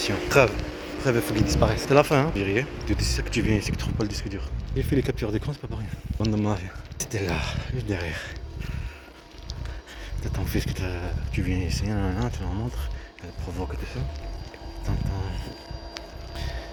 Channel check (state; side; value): identical; both; correlation 1.00